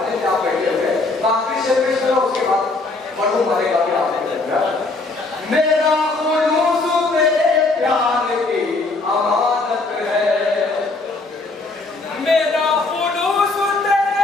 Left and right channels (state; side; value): quieter; right; 3.4 dB